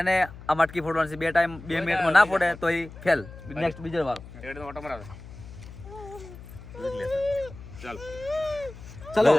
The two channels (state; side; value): noise; left; hum, 16 dB below the sound